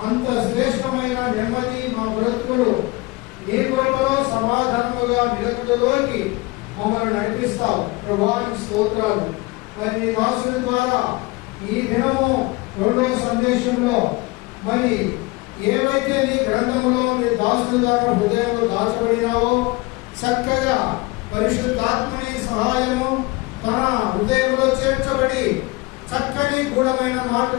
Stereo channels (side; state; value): right; quieter; 23.2 dB